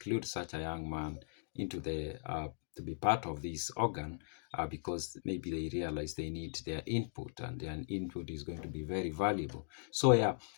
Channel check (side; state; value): right; silent; digital silence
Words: such a young man into the to be part of this organ because maybe they realize they need their input, and their input is going to be very valuable. So